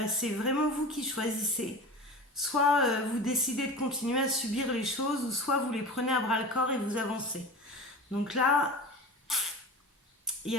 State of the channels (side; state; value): both; normal; correlation 0.33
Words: c'est vraiment vous qui choisissez. Soit vous décidez de continuer à subir les choses, ou soit vous les prenez à bras le corps et vous avancez. Donc là, il y